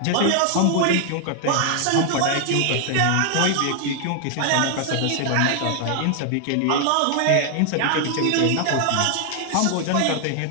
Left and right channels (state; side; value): different; both; correlation 0.00